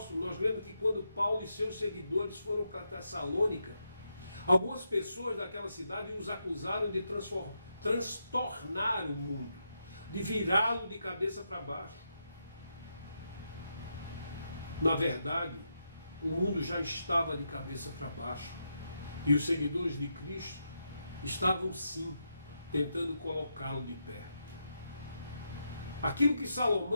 nós lemos que quando Paulo e seus seguidores foram para Tessalônica, algumas pessoas daquela cidade os acusaram de transtornar o mundo, de virá-lo de cabeça para baixo. Na verdade, o mundo já estava de cabeça para baixo e os seguidores de Cristo estavam sim tentando colocá-lo de pé. Aquilo que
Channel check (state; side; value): inverted; both; correlation -0.83